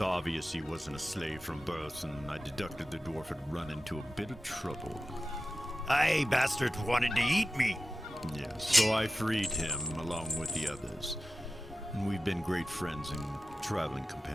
he wasn't a slave from birth, and I deducted the dwarf had run into a bit of trouble. Aye, bastards wanted to eat me. Yes, so I freed him along with the others. And we've been great friends and traveling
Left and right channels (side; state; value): both; normal; correlation 0.94